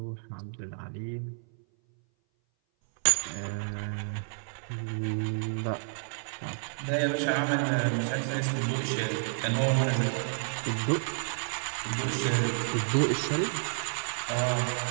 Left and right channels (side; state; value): left; silent; 57 dB below the other